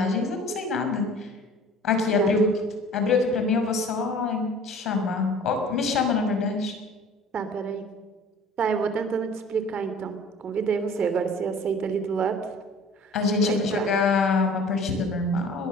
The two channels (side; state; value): both; normal; correlation 0.47